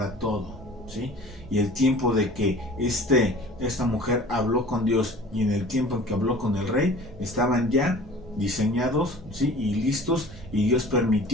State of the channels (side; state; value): both; normal; correlation 0.45